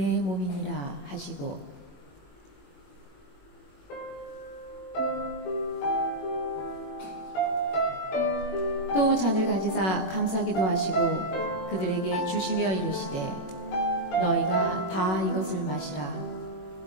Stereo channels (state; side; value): late; right; 21 ms